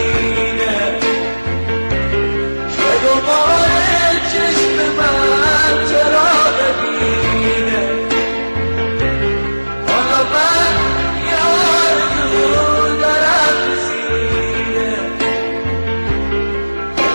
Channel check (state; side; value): inverted; both; correlation -1.00